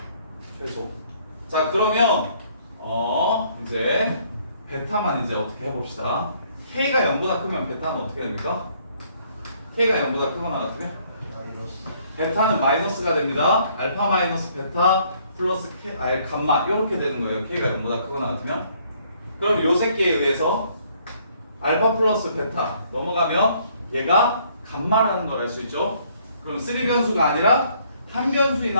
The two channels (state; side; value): inverted; both; correlation -0.65